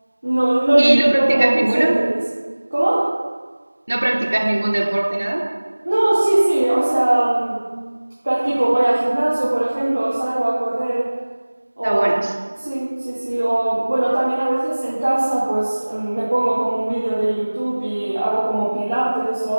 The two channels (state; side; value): inverted; both; correlation -1.00